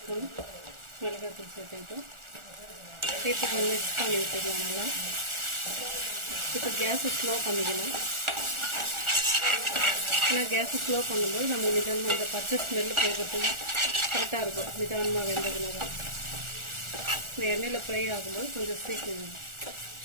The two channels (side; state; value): left; late; 1.4 ms